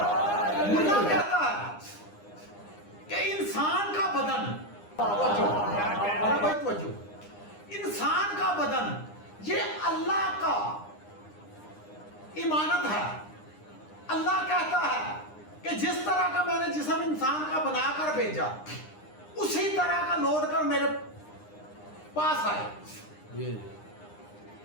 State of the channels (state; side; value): late; right; 9.8 ms